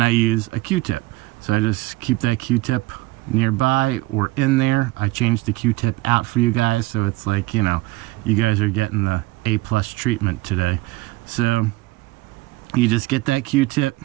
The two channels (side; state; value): left; quieter; 20.3 dB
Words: I use a Q-tip. So I just keep that Q-tip nearby or in there. I changed the Q-tip out for you guys, so it's like, you guys are getting the A+ treatment today. So you just get that Q-tip,